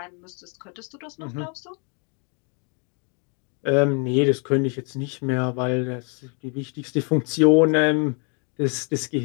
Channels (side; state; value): right; quieter; 36.8 dB